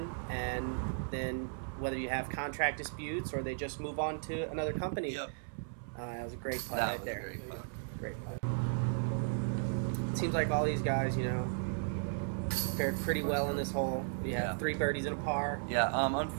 and then whether you have contract disputes or they just move on to another company. Yep. That was a great putt That right was there. a great putt. Great putt. It seems like all these guys, you know, fared pretty well in this hole. We have 3 birdies and a par. Yeah,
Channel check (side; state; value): left; silent; 54 dB below the other